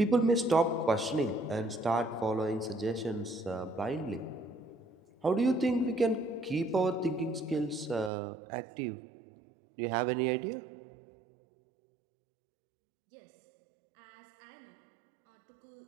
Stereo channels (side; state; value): left; drops out; at 8.1 s